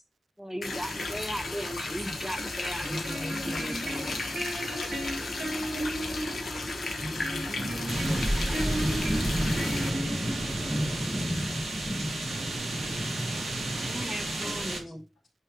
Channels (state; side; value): normal; both; correlation 0.92